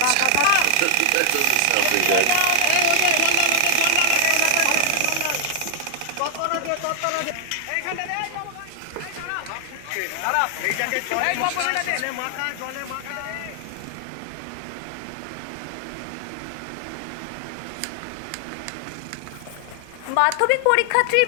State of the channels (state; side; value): different; both; correlation 0.00